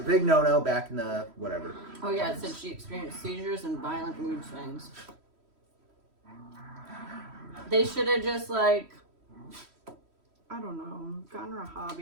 big no-no back in the whatever. Oh yeah, it said she experienced seizures and violent mood swings. They should have just I don't know, gotten her a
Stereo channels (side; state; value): left; late; 3.1 ms